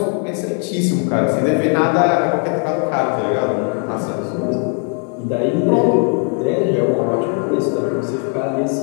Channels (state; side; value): quieter; right; 38.8 dB